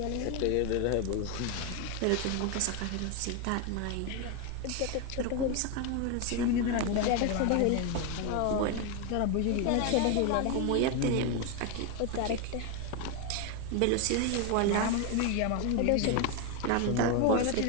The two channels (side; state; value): both; different; correlation 0.01